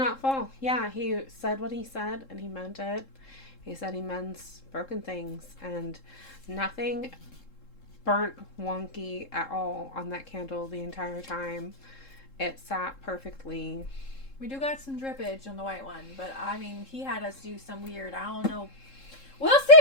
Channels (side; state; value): right; late; 3.7 ms